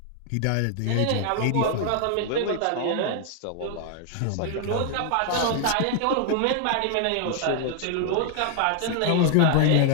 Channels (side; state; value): both; different; correlation 0.00